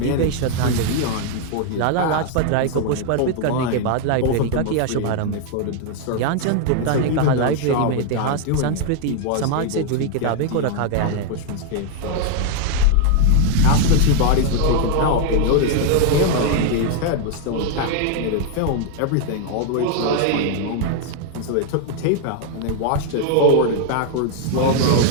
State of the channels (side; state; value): both; different; correlation 0.00